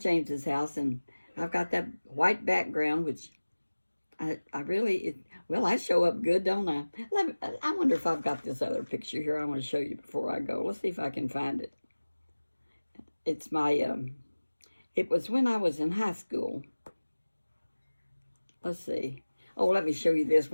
James's house, and I've got that white background, which I really, well, I show up good, don't I? I wonder if I've got this other picture here I want to show you before I go. Let's see if I can find it. It's my, it was when I was in high school. Let's see. Oh, let me show you this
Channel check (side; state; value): both; inverted; correlation -1.00